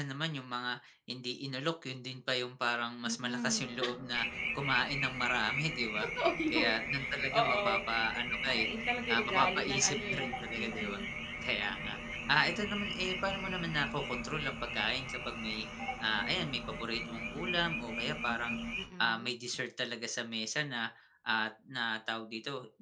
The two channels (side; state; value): both; identical; correlation 1.00